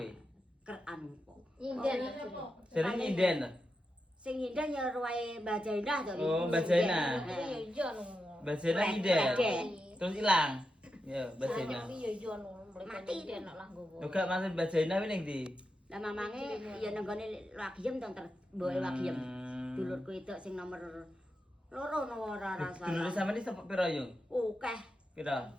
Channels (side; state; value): both; normal; correlation 0.88